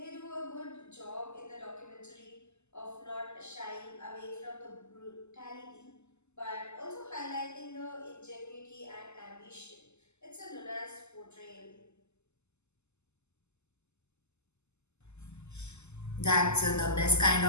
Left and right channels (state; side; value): late; right; 0.82 ms